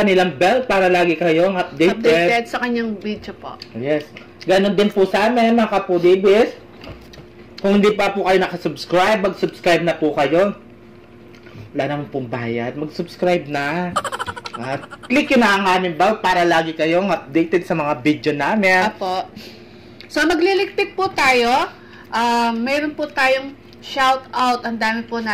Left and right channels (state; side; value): identical; both; correlation 1.00